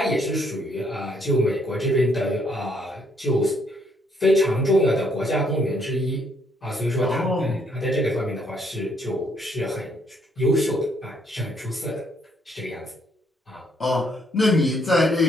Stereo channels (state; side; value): normal; both; correlation 0.70